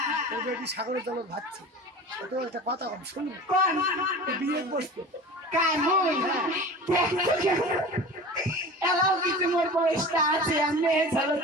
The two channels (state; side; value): normal; both; correlation 0.36